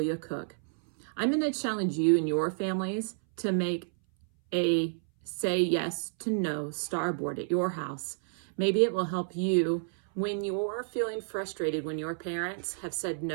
Cook. I'm going to challenge you and your families to make a say yes to no starboard at your house. Maybe it will help you when you're feeling frustrated when your parents have said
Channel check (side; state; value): left; silent; 58 dB below the other